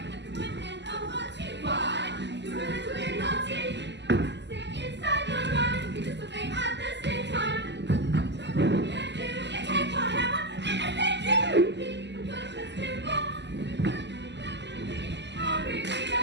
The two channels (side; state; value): left; late; 0.51 ms